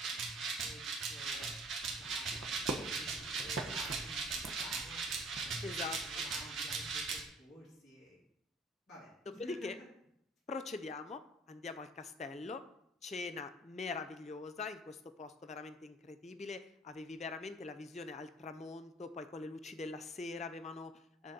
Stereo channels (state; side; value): normal; both; correlation 0.51